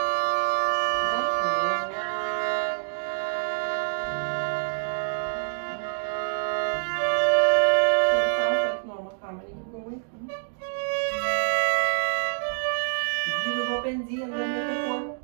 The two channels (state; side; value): silent; left; digital silence